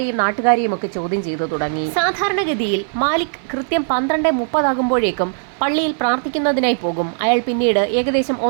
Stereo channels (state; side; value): silent; left; 56 dB below the other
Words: നാട്ടുകാരെയും ഒക്കെ ചോദ്യം ചെയ്തു തുടങ്ങി. സാധാരണഗതിയിൽ മാലിക് കൃത്യം 12:30 ആകുമ്പോഴേക്കും പള്ളിയിൽ പ്രാർത്ഥിക്കുന്നതിനായി പോകും. അയാൾ പിന്നീട് ഏകദേശം